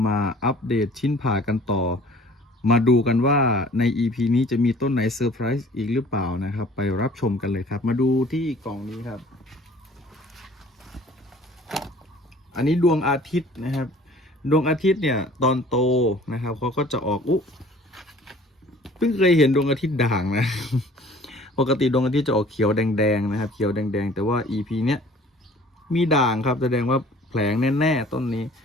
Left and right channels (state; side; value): normal; both; correlation 0.50